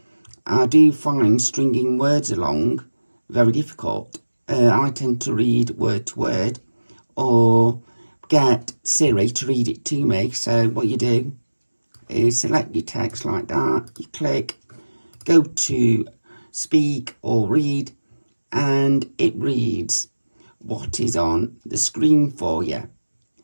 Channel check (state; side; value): inverted; both; correlation -1.00